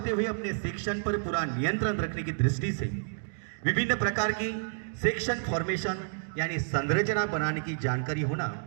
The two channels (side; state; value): left; silent; digital silence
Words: हुए अपने सेक्शन पर पूरा नियंत्रण रखने की दृष्टि से विभिन्न प्रकार की सेक्शन फॉर्मेशन यानी संरचना बनाने की जानकारी होना